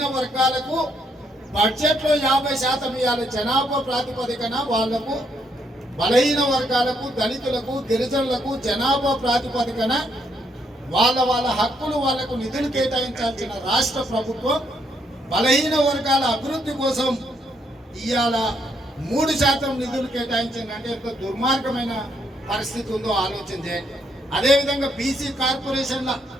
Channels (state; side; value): normal; both; correlation 0.74